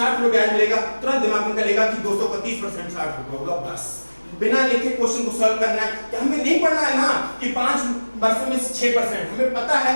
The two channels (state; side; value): inverted; both; correlation -1.00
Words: रुपए ब्याज मिलेगा। तुरंत दिमाग में चलेगा कि 200 का 30% 60 रुपए होगा। बस बिना लिखे क्वेश्चन को सॉल्व करना है कि हमें नहीं पढ़ना है ना कि 5 वर्षों में 6%। हमें पता है